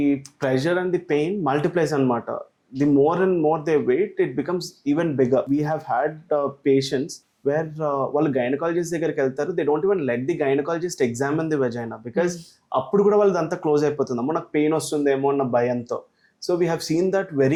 pressure and the pain multiplies anamata. The more and more they wait, it becomes even bigger. We have had patients where వాళ్ళు gynaecologist దగ్గరికి వెళ్తారు, they don't even let the gynaecologist examine the vagina because అప్పుడు కూడా వాళ్ళది అంతా close అయిపోతుంది, అమ్మో నాకు పెయిన్ వస్తుందేమో అన్న భయంతో. So we have seen that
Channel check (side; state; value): both; identical; correlation 1.00